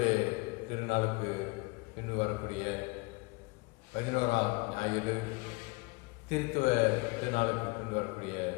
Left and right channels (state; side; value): quieter; right; 27.0 dB